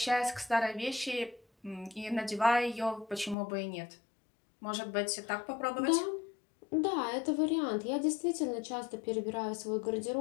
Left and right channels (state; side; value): drops out; right; at 3.4 s